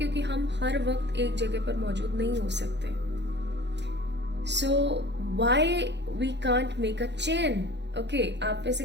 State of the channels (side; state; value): left; late; 0.51 ms